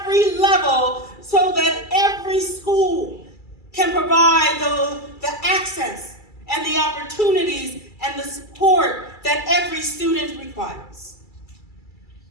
level so that every school can provide the access and the opportunities and the support that every student requires.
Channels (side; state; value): right; late; 2.3 ms